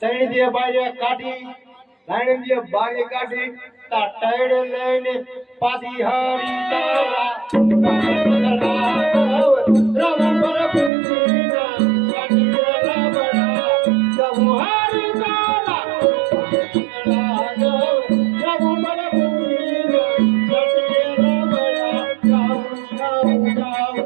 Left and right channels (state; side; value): drops out; left; at 10.9 s